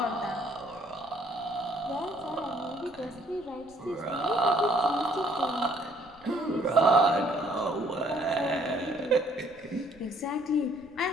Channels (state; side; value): noise; left; rumble, 27 dB below the sound